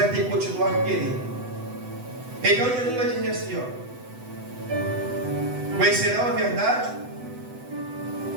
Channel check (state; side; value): late; left; 8.0 ms